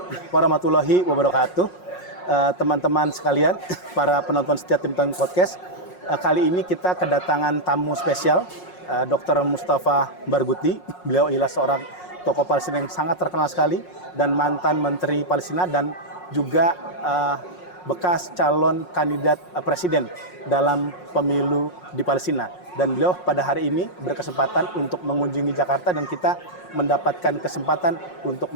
warahmatullahi wabarakatuh. Teman-teman sekalian, para penonton setia Tim Tong Podcast. Kali ini kita kedatangan tamu spesial, Dr. Mustafa Barghouti. Beliau ialah seorang tokoh Palestina yang sangat terkenal sekali dan mantan Menteri Palestina dan juga bekas calon kandidat presiden dalam pemilu di Palestina. Dan beliau pada hari ini berkesempatan untuk mengunjungi Jakarta dan kita mendapatkan kesempatan untuk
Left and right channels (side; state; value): right; late; 5.5 ms